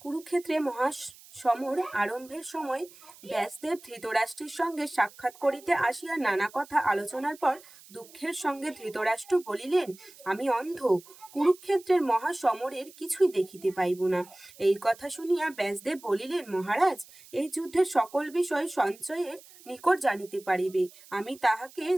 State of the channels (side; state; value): right; noise; hiss, 22 dB below the sound